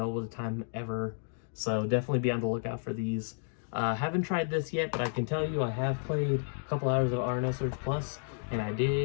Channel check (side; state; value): right; silent; digital silence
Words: at a time ever, so definitely be on the lookout for these. Haven't tried this yet, but I can tell you I have played a couple hours of No Search Plus, and I